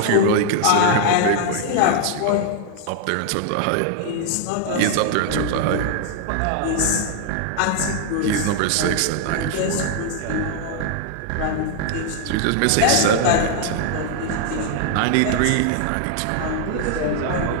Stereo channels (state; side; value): different; both; correlation 0.00